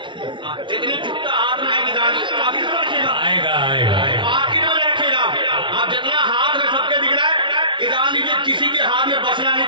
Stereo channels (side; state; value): left; late; 0.24 ms